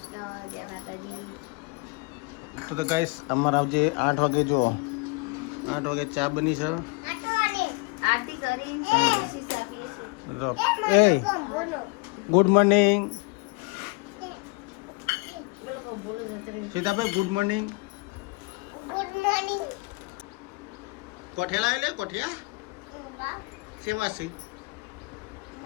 તો ગાઈસ અમારે આવજે 8 વાગે. જો 8 વાગે ચા બની છે. એ good morning Sitabhai, good morning. કોઠિયા લાવે લે, કોઠિયા શેમાં છે?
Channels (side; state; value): right; quieter; 28.8 dB